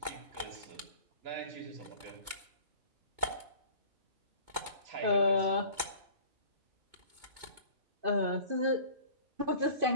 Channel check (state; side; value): late; left; 2.2 ms